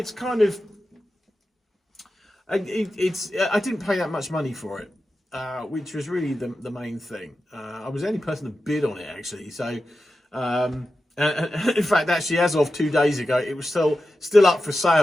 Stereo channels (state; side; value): normal; both; correlation 0.92